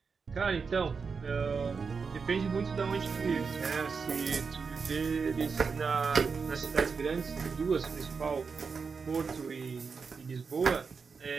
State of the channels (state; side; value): quieter; left; 5.3 dB